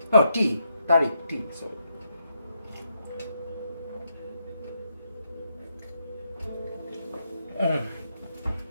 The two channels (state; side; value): inverted; both; correlation -0.80